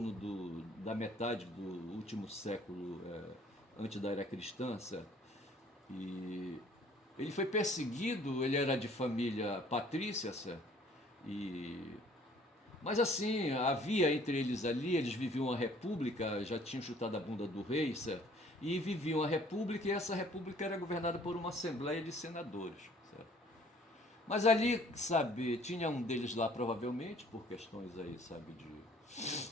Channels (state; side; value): normal; both; correlation 0.56